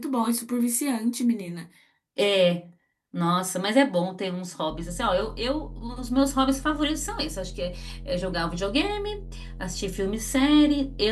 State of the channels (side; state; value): both; identical; correlation 1.00